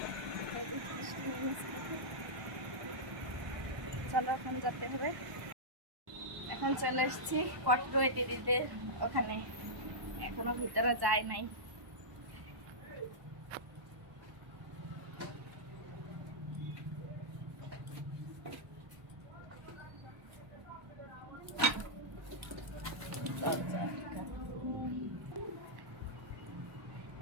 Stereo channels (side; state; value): left; late; 1.1 ms